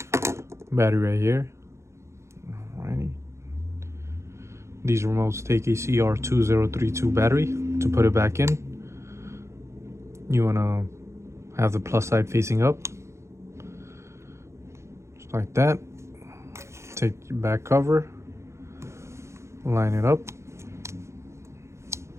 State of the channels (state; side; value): late; left; 0.14 ms